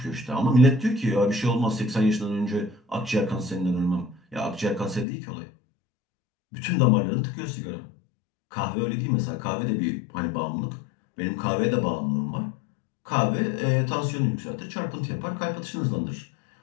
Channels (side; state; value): right; drops out; at 5.1 s